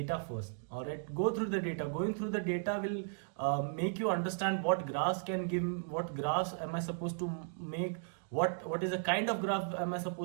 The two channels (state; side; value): silent; left; digital silence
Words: first, all right? Go through the data. Going through the data will make you understand what graphs can give, what graphs am I supposed to make, what is the kind of graph am I